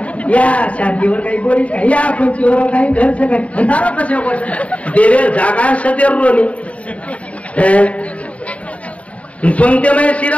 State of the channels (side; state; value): right; late; 0.066 ms